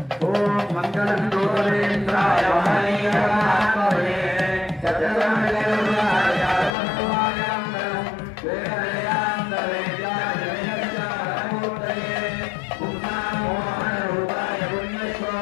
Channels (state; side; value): drops out; right; at 6.7 s